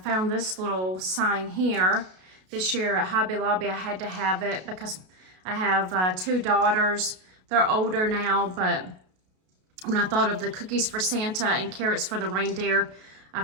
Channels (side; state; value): left; late; 32 ms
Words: found this little sign here. This year at Hobby Lobby, I had to have it because I have 2 daughters. They're older now, but when I thought of the cookies for Santa and carrots for the reindeer, I